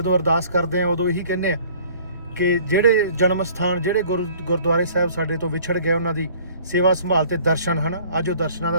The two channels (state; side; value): inverted; both; correlation -0.53